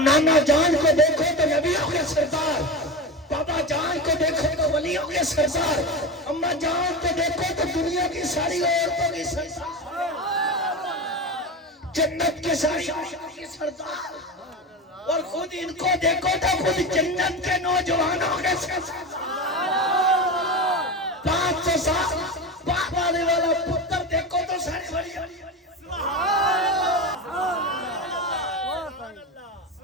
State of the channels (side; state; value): both; normal; correlation 0.22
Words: جان کو دیکھو تو نبیوں کے سردار بابا جان کو دیکھو تو ولیوں کے سردار اماں جان کو دیکھو تو دنیا کی ساری عورتوں کی سردار جنت کے ساری عورتوں کی سردار اور خود ان کو دیکھو تو خود جنت کے نوجوانوں کے سردار 500 سال باپ آنے والا پتر دیکھو تو سارے بڑی